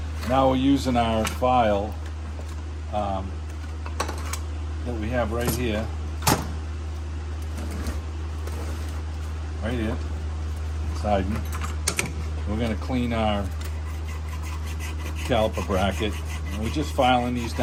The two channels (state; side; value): identical; both; correlation 1.00